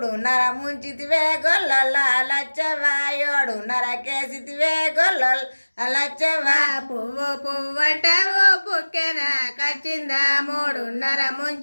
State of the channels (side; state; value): both; inverted; correlation -1.00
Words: ముంచితివే గొల్లల లచ్చవా 7:30 కేసితివే గొల్లల లచ్చవా పువ్వు పువ్వు అంటావు పుక్కెన కచ్చిందా 3:30